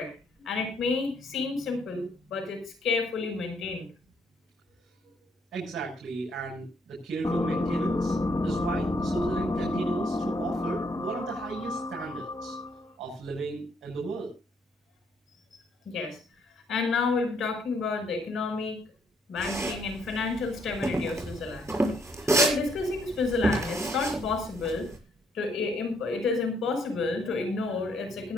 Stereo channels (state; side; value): normal; both; correlation 0.70